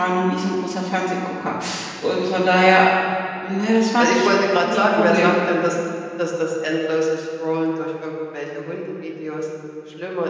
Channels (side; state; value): both; identical; correlation 1.00